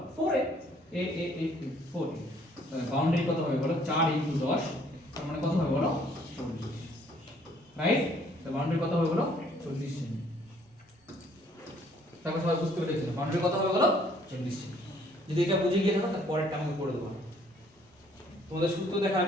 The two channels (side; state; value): both; normal; correlation 0.62